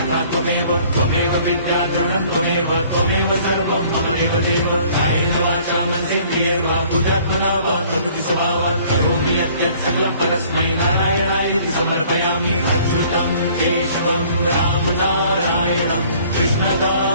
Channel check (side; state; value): both; inverted; correlation -0.55